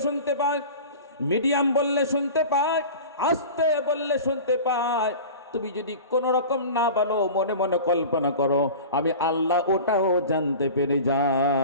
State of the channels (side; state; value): both; inverted; correlation -0.36